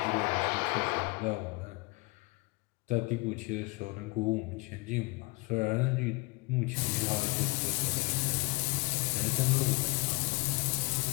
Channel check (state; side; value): quieter; right; 26.9 dB